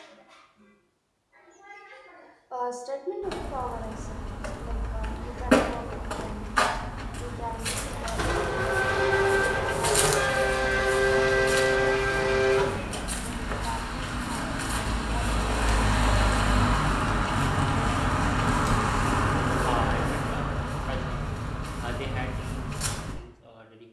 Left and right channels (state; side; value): identical; both; correlation 1.00